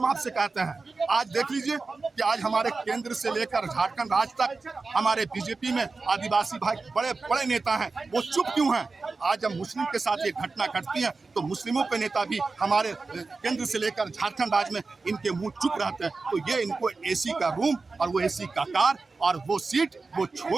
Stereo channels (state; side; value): quieter; left; 4.0 dB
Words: आपसे कहते हैं, आज देख लीजिए कि आज हमारे केंद्र से लेकर झारखंड राज्य तक हमारे बीजेपी में आदिवासी भाई बड़े बड़े नेता हैं, वो चुप क्यों हैं? आज जब मुस्लिम के साथ ये घटना घटती है तो मुस्लिमों के नेता भी हमारे केंद्र से लेकर झारखंड राज्य में इनके मुंह चुप रहते हैं। तो ये इनको एसी का रूम और वो एसी का कार और वो सीट वो